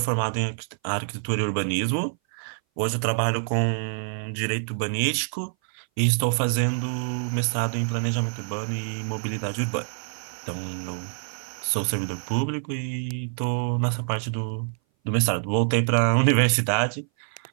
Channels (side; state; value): left; silent; 58 dB below the other